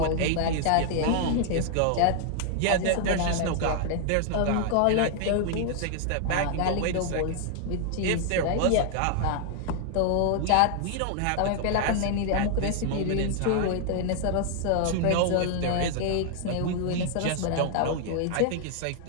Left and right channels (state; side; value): different; both; correlation 0.00